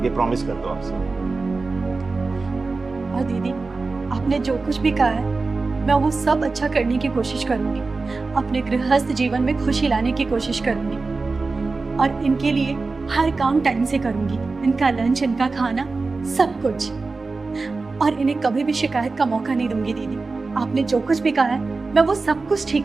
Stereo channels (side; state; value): left; quieter; 3.9 dB